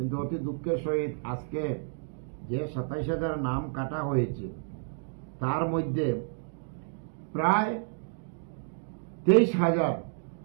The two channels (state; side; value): silent; left; digital silence